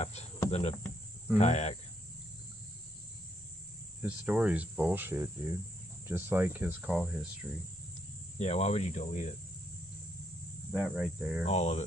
than a kayak. His story's bullshit, dude. Just like his call history. Yeah, why would you delete it? That right there. All of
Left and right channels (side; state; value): both; normal; correlation 0.72